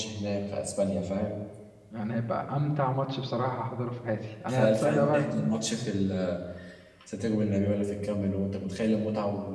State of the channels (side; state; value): both; identical; correlation 1.00